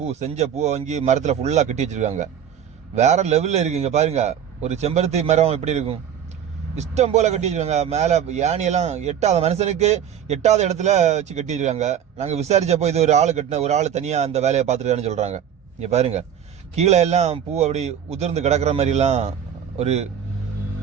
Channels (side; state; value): left; quieter; 9.0 dB